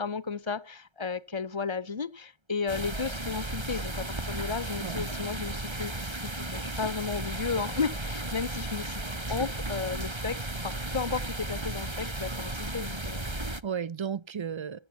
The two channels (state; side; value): late; left; 1.3 ms